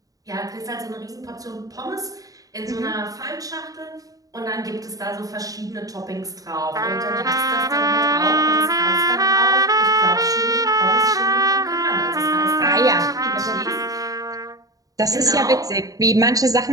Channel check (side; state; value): left; late; 0.17 ms